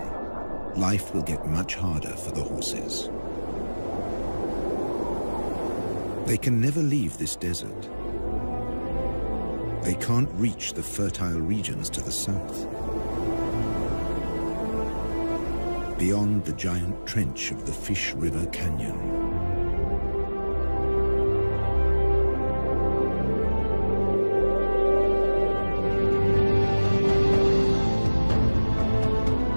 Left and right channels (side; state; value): both; inverted; correlation -1.00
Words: life will get much harder for the horses. They can never leave this desert. They can't reach the fertile regions to the south. Beyond the giant trench of the Fish River Canyon.